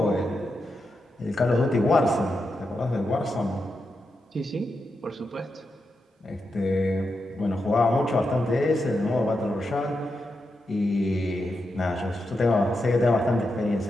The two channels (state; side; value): normal; both; correlation 0.86